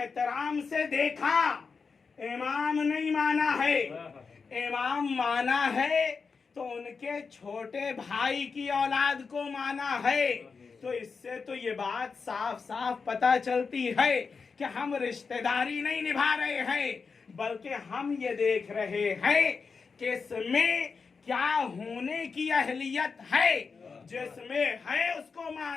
से देखा, इमाम नहीं माना है। इमाम माना है तो उनके छोटे भाई की औलाद को माना है। तो इससे तो ये बात साफ साफ पता चलती है कि हम रिश्तेदारी नहीं निभा रहे हैं, बल्कि हम ये देख रहे हैं कि इसमें क्या होने की अहलियत है, जिसमें है उसको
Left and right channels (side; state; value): right; quieter; 5.1 dB